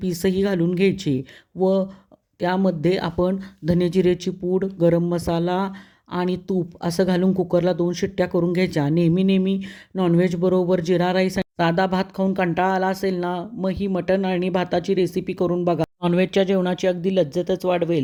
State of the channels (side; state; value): both; identical; correlation 1.00